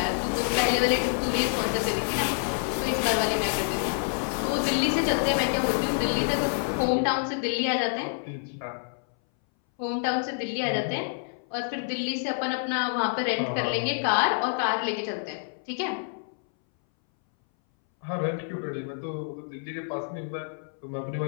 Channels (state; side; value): silent; right; 59 dB below the other